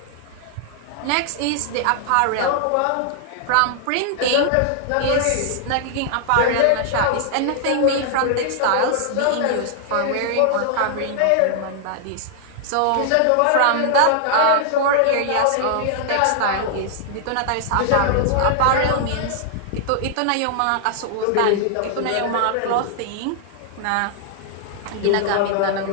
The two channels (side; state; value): both; different; correlation -0.01